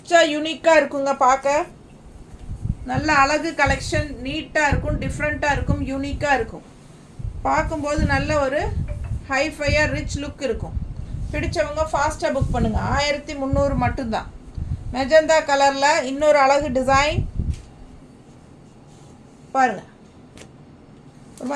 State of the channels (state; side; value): identical; both; correlation 1.00